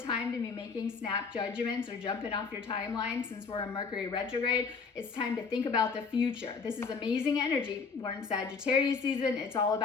time to be making snap judgments or jumping off your timeline since we're in Mercury retrograde. It's time to think about the future. This is amazing energy. We're in Sagittarius season. It's all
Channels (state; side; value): quieter; right; 5.0 dB